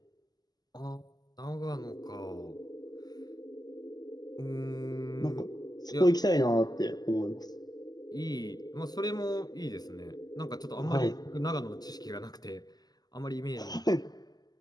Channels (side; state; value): right; late; 0.20 ms